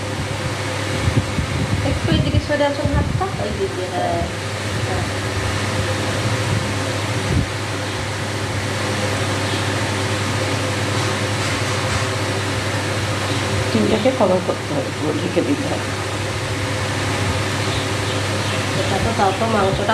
একটু এদিকে সরে আসুন হাতটা, ওই দিকে। হ্যাঁ, ডিমটাকে কভার করতে হবে, পুরো ঢেকে দিতে হবে। এটা তো তাও তো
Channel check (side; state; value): both; identical; correlation 1.00